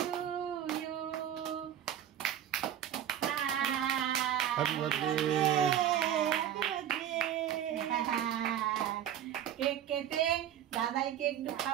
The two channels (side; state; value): left; quieter; 10.4 dB